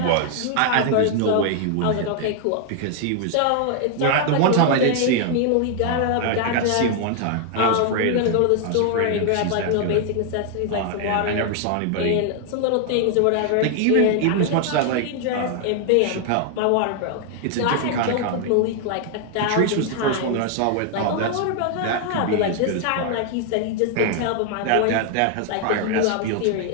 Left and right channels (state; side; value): different; both; correlation 0.00